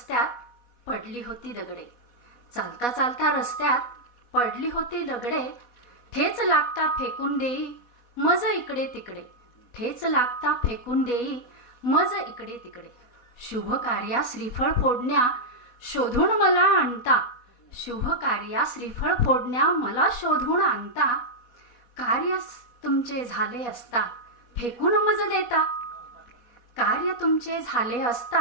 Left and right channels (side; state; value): right; late; 4.1 ms